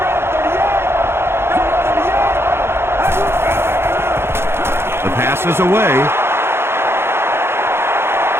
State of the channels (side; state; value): left; late; 0.12 ms